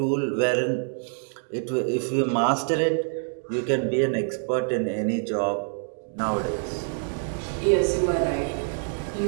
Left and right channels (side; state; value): left; silent; digital silence